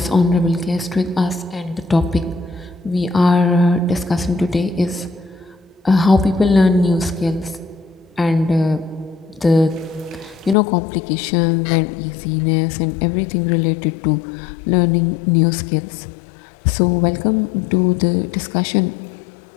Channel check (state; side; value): drops out; right; at 10.6 s